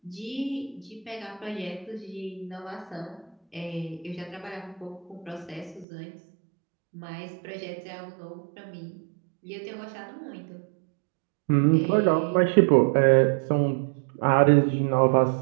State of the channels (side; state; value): left; drops out; at 5.9 s